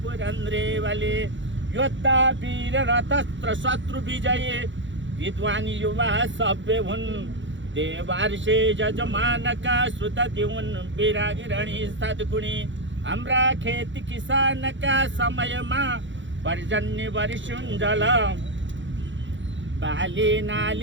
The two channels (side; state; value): left; late; 0.54 ms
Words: पुरन्द्रे बलि योद्धा वीर रतस्त्र शत्रु विजयी विद्वान युवा सभ्य हुन् देवार्षे जजमानका श्रुतति हुन् विरागिरणी सद्गुणी हाम्रा खेती किसानका समयमा पर्जन्य वर्षुन् जल बाली